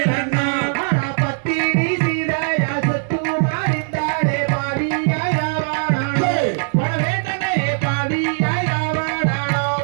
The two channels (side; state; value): left; silent; 66 dB below the other